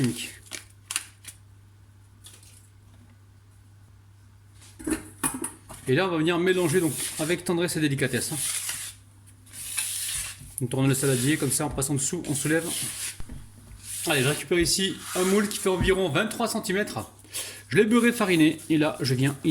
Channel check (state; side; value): identical; both; correlation 1.00